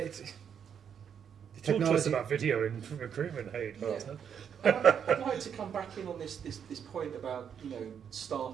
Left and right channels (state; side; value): quieter; left; 7.9 dB